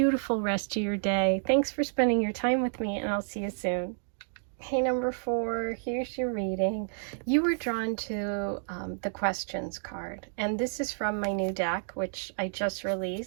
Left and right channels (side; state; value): left; silent; digital silence